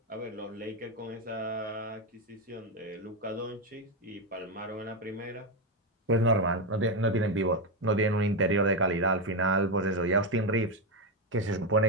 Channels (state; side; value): normal; both; correlation 0.08